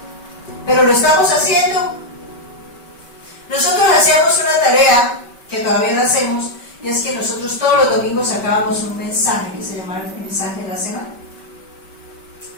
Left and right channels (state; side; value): late; right; 5.2 ms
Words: Pero lo estamos haciendo. Nosotros hacíamos una tarea, que todavía la hacemos, y es que nosotros todos los domingos sacábamos un mensaje que se llamaba el mensaje de la semana,